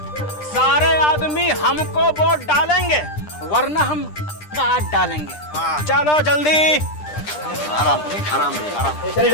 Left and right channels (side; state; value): right; late; 9.9 ms